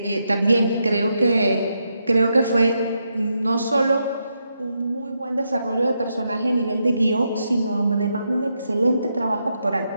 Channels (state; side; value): inverted; both; correlation -0.82